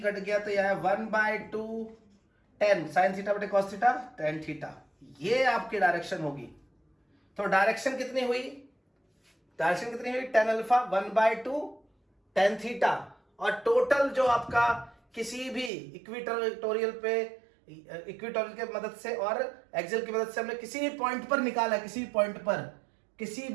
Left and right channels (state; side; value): drops out; left; at 15.7 s